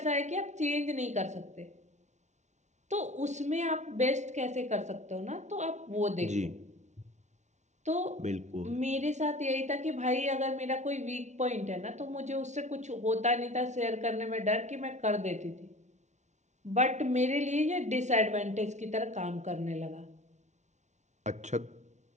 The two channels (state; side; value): late; left; 0.33 ms